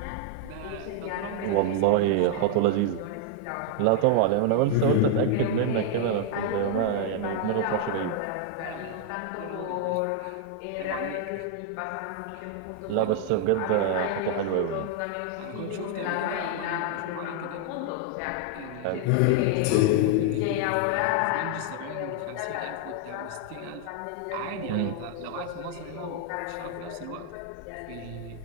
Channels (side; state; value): both; different; correlation 0.00